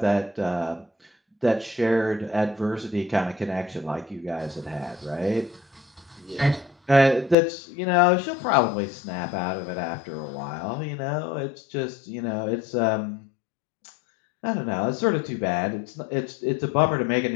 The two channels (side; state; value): right; drops out; at 7.4 s